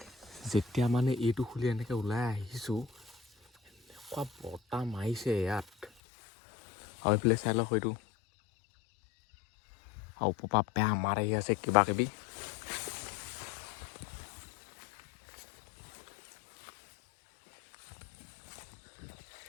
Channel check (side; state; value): right; drops out; at 5.9 s